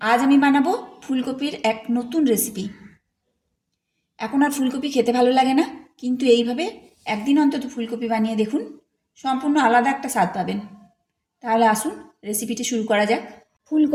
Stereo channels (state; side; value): identical; both; correlation 1.00